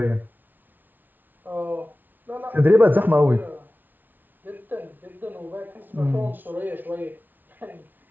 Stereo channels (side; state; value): left; late; 0.086 ms